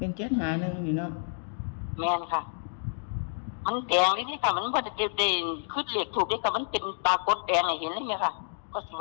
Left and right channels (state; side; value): silent; right; digital silence